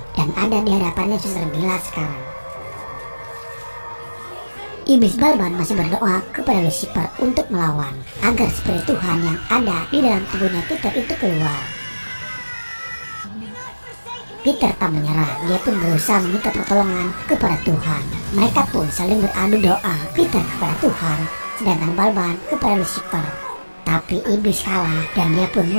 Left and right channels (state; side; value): inverted; both; correlation -1.00